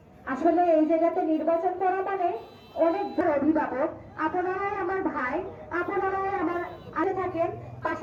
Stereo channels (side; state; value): both; identical; correlation 1.00